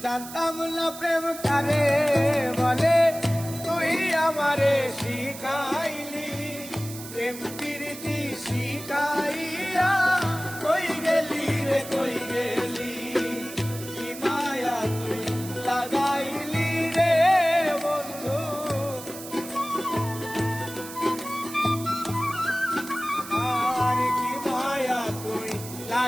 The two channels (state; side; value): noise; right; hiss, 13 dB below the sound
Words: জানতাম না প্রেম কারে বলে, তুই আমারে শিখাইলি। প্রেম প্রীতি শিখাইয়া কই গেলি রে কই গেলি। কি মায়া তুই লাগাইলি রে বন্ধু, আর কি মায়া তুই